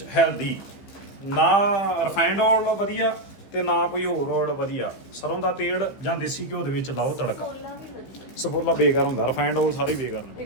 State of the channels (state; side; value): late; right; 15 ms